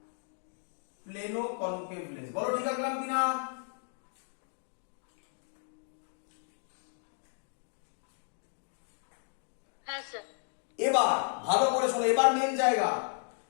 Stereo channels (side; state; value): right; silent; 55 dB below the other